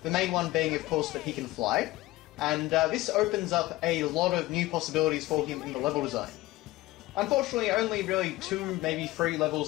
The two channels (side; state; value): right; quieter; 18.3 dB